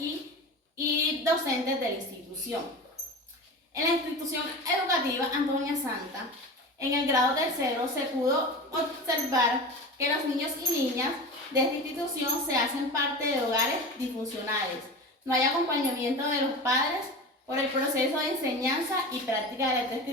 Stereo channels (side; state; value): both; normal; correlation 0.30